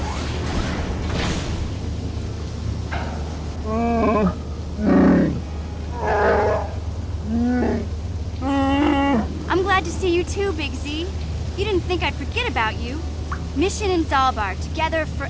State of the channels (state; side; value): identical; both; correlation 1.00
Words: I'm glad to see you too, Big Z. You didn't think I'd forget about you. Mission and Zalbar, together